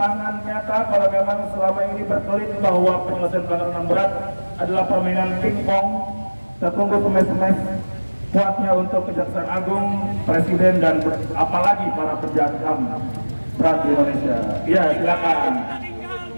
nyata kalau memang selama ini berkelit bahwa penyelesaian pelanggaran HAM berat adalah permainan pingpong. Kita tunggu semes-semes kuatnya untuk Kejaksaan Agung, Presiden, dan apalagi para pejabat HAM berat di Indonesia. Iya, silakan.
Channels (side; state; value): both; inverted; correlation -1.00